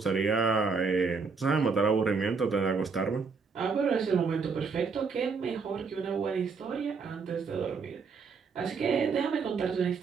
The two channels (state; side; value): quieter; left; 5.0 dB